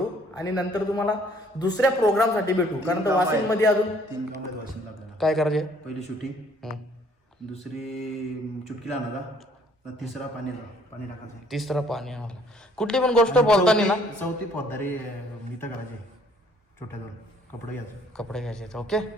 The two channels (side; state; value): both; normal; correlation 0.61